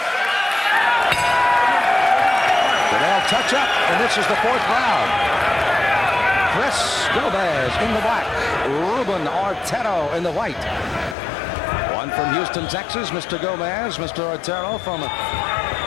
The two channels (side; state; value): right; drops out; at 11.2 s